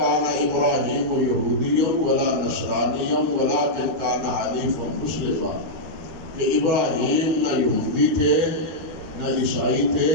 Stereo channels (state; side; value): late; left; 13 ms